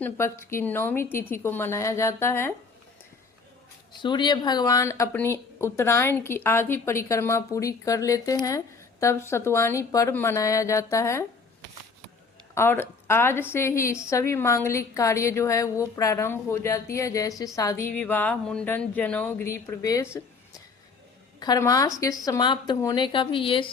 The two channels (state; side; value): quieter; right; 4.6 dB